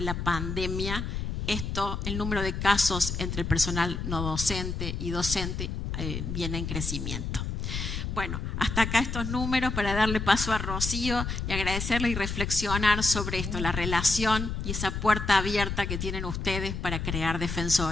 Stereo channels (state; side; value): noise; left; rumble, 4 dB below the sound